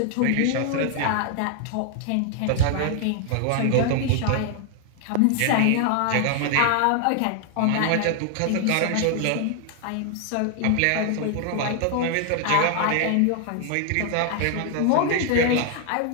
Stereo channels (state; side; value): different; both; correlation 0.00